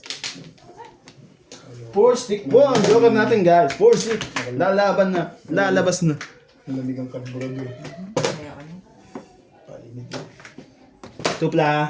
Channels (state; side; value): identical; both; correlation 1.00